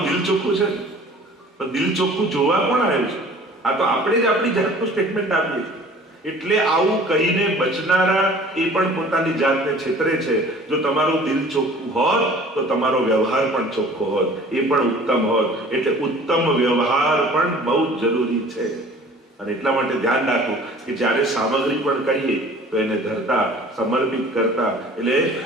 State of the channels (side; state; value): both; normal; correlation 0.47